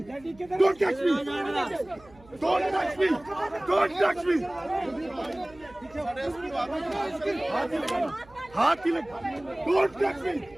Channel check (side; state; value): right; noise; hum, 25 dB below the sound